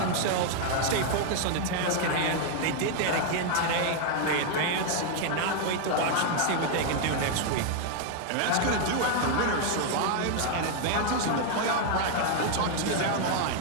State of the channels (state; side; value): different; both; correlation 0.00